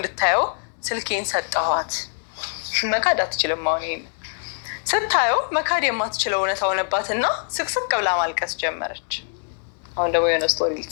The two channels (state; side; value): silent; right; digital silence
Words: ስልኬን ሰጠኋት። መካድ አትችልም። አሁን ይሄን ስታየው መካድ የማትችለው እውነት ሆነባትና ስቅስቅ ብላ ማልቀስ ጀመረች። አሁን ደግሞ የሆነ ስቶሪ